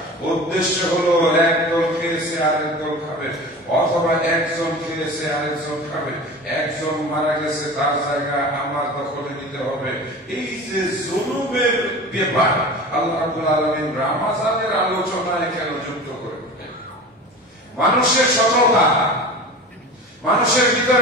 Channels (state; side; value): normal; both; correlation 0.35